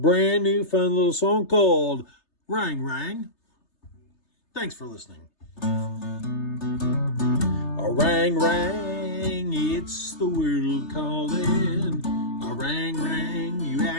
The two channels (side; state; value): right; late; 3.3 ms